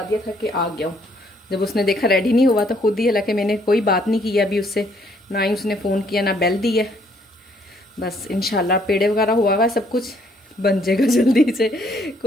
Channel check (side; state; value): both; normal; correlation 0.67